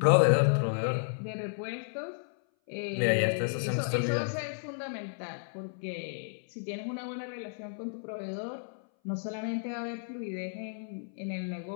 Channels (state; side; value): silent; right; 56 dB below the other